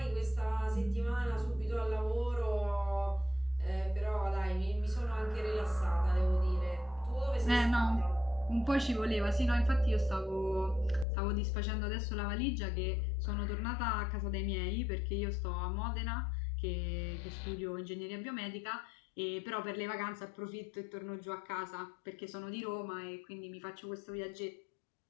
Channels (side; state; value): right; drops out; at 11.1 s